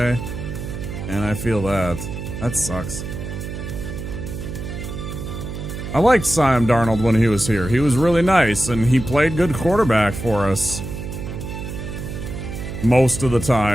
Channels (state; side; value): noise; right; hum, 7 dB below the sound